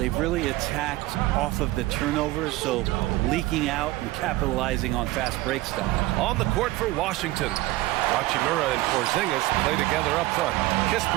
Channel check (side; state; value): left; quieter; 18.2 dB